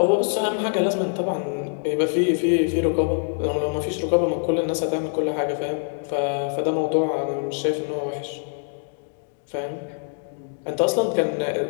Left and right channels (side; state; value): right; silent; digital silence